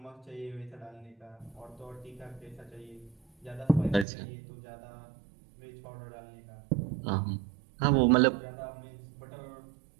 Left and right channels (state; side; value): drops out; left; at 4.0 s